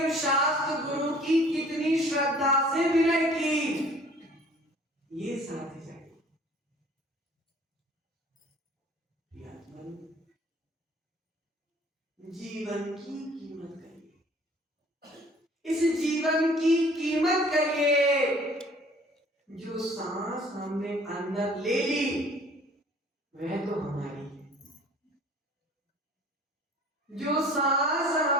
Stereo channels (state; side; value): normal; both; correlation 0.52